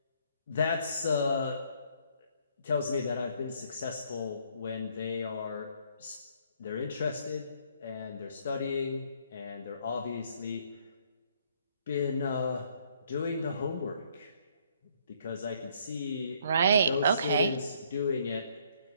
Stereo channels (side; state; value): both; inverted; correlation -0.65